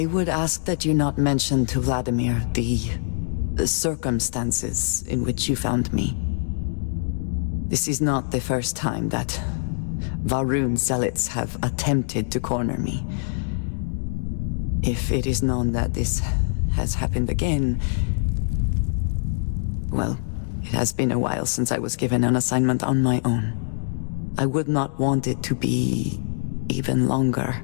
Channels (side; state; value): right; silent; digital silence